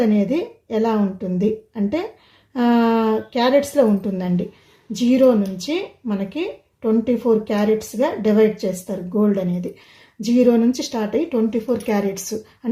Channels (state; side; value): identical; both; correlation 1.00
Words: అనేది ఎలా ఉంటుంది అంటే క్యారెట్స్లో ఉంటుందండి. 0 నుంచి మనకి 24 క్యారెట్స్గా డివైడ్ చేస్తారు గోల్డ్ అనేది. 0 నుంచి స్టార్ట్ అయ్యి 24 క్యారెట్స్